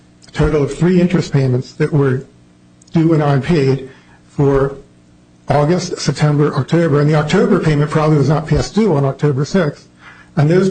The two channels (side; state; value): both; identical; correlation 1.00